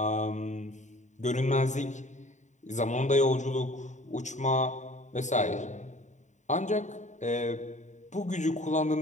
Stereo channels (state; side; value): late; right; 0.35 ms